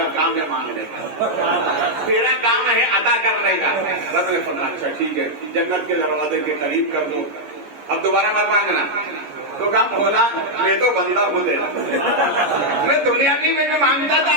کام ہے مانگنے کا, تیرا کام ہے عطا کرنے کا. رب نے فرمایا اچھا ٹھیک ہے, جنت کے دروازے کے قریب کر دو, اب دوبارہ مت مانگنا. تو کہا مولا میں تو بندہ ہوں تیرا, میں دنیا میں بھی مانگتا تھا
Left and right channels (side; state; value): left; late; 13 ms